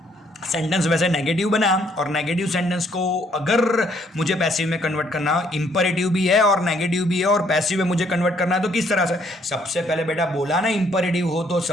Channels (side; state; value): both; normal; correlation 0.67